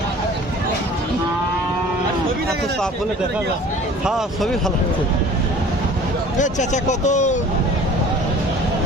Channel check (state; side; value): normal; both; correlation 0.46